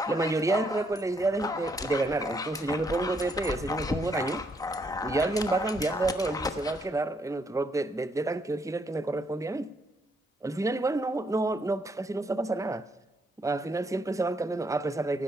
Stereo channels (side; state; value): both; normal; correlation 0.73